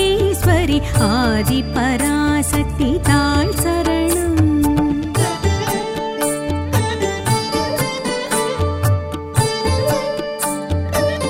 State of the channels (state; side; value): identical; both; correlation 1.00